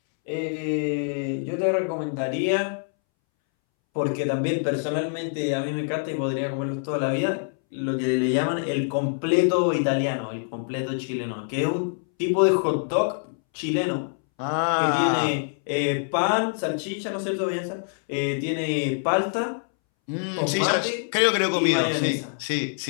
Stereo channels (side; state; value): right; silent; 62 dB below the other